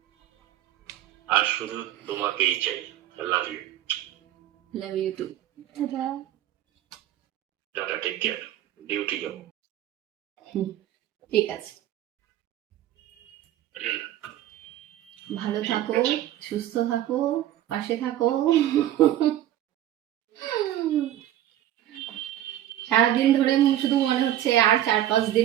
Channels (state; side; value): quieter; left; 12.6 dB